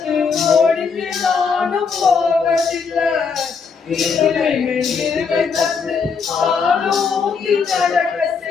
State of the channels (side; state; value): right; quieter; 5.6 dB